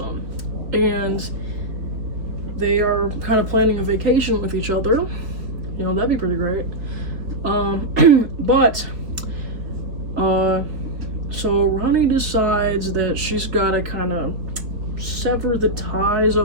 and they are kind of planning a vacation with each other. You know, that'd be pretty great. So Ronnie decides that she's gotta kind of sever the ties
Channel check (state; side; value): late; left; 3.6 ms